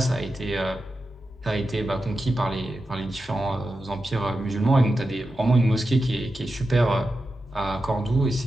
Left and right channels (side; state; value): both; normal; correlation 0.90